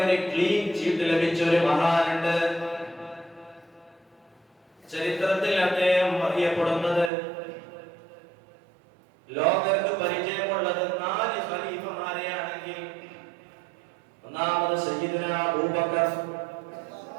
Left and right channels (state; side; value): drops out; left; at 7.1 s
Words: ഒരു ക്ലീൻ ചീട്ട് ലഭിച്ച ഒരു മഹാനുണ്ട്. ചരിത്രത്തിൽ അദ്ദേഹം അറിയപ്പെടുന്നത്, ലോകർക്ക് പരിചയമുള്ളത് 4 ഖലീഫമാരെയാണെങ്കിൽ ഒന്നാമത് സയ്യിദുനാ അബൂബക്കർ,